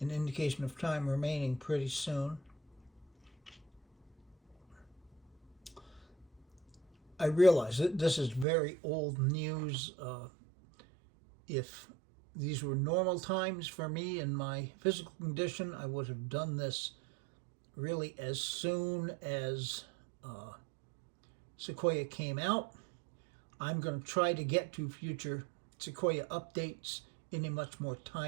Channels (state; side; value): drops out; left; at 8.5 s